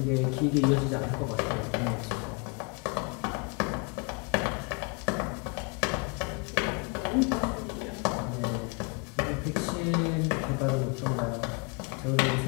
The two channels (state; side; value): quieter; right; 33.2 dB